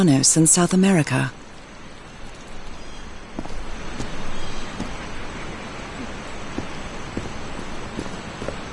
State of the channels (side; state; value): both; identical; correlation 1.00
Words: in South America.